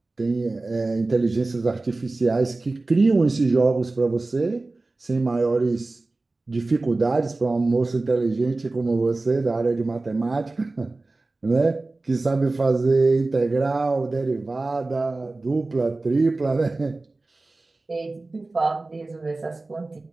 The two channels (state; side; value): quieter; left; 3.2 dB